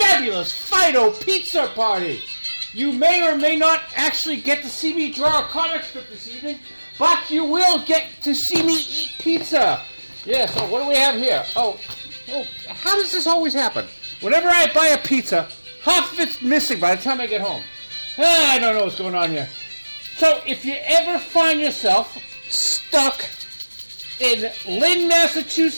Fido pizza party. You may or may not actually get to see me draw a comic strip this evening, but you will get to see me eat pizza. Yeah, so what do we have here? Oh, how does this always happen? Whenever I buy a pizza, half of it's missing by the time I get home. I don't know what's going on here. So if you ever find yourself stuck in Lynn,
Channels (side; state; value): both; inverted; correlation -1.00